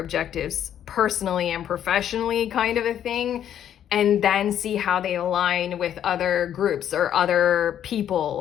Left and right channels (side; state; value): right; quieter; 10.1 dB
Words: personally and professionally, kind of a thing. And then see how they align with other groups or other